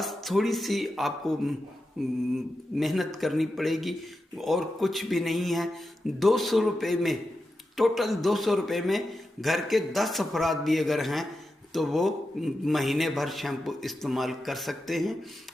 थोड़ी सी आपको मेहनत करनी पड़ेगी और कुछ भी नहीं है। 200 रुपये में, टोटल 200 रुपये में घर के 10 अफराद भी अगर हैं तो वो महीने भर शैम्पू इस्तेमाल कर सकते हैं।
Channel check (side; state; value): both; normal; correlation 0.90